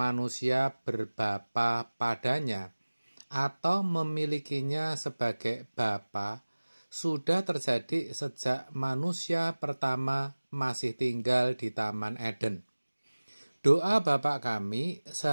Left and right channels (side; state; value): both; inverted; correlation -1.00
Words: berbapa padanya atau memilikinya sebagai bapa sudah terjadi sejak manusia pertama masih tinggal di Taman Eden. Doa Bapa kami